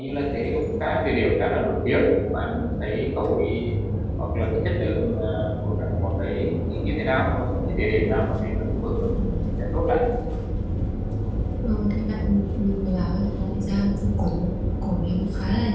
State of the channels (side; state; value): both; identical; correlation 1.00